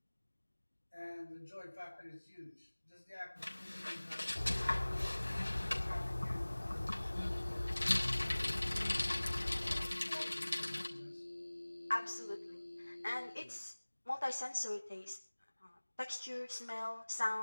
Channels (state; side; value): inverted; both; correlation -1.00